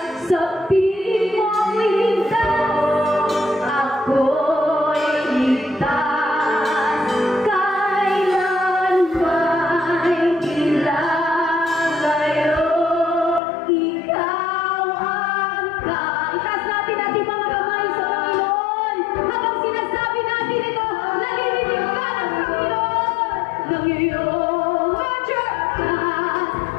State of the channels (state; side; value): drops out; right; at 13.4 s